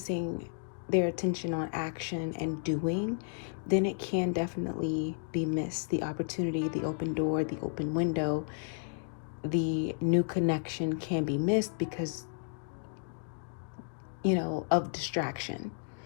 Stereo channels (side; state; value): right; silent; digital silence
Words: their attention on action and doing, then it can definitely be missed. The opportunity, the open door, the open window, the new connection can be missed because, of distraction,